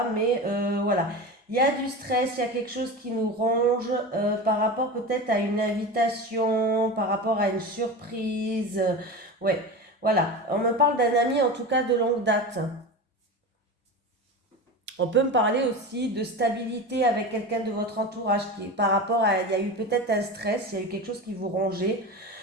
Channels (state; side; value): normal; both; correlation 0.27